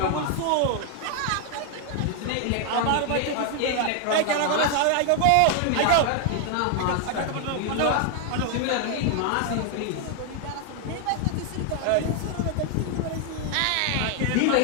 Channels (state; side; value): different; both; correlation 0.00